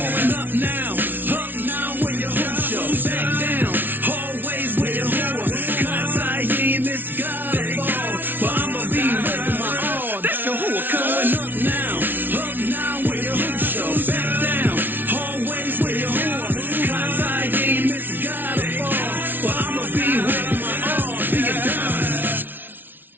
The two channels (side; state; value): left; late; 0.093 ms